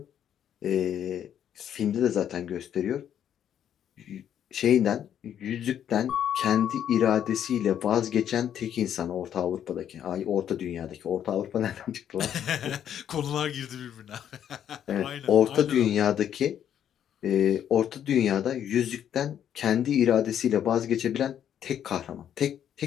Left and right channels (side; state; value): right; quieter; 9.7 dB